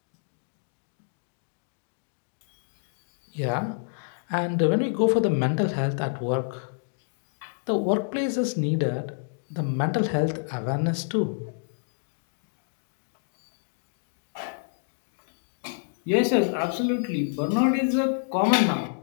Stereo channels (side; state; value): right; silent; digital silence